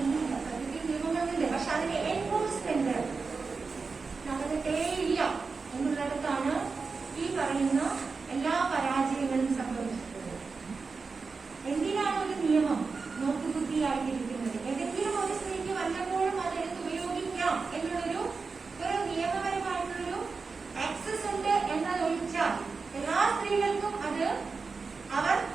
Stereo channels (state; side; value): quieter; left; 4.5 dB